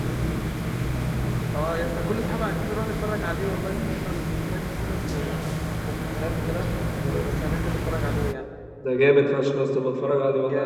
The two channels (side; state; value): both; identical; correlation 1.00